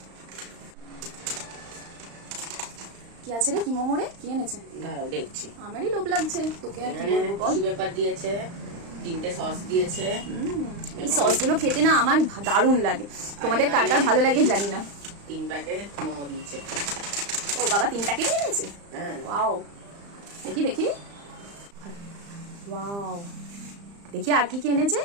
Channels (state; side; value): late; left; 35 ms